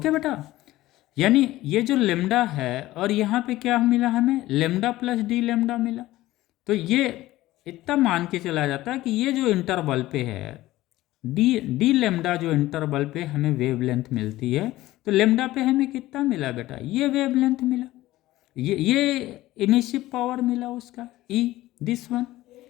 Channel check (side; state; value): right; quieter; 16.6 dB